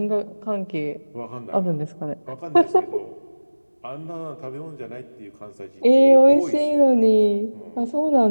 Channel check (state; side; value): inverted; both; correlation -1.00